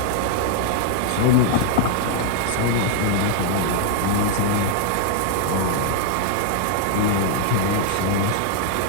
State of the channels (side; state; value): both; different; correlation -0.01